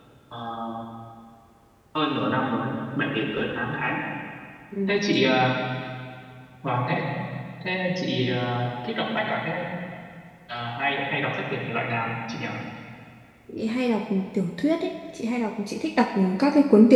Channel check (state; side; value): identical; both; correlation 1.00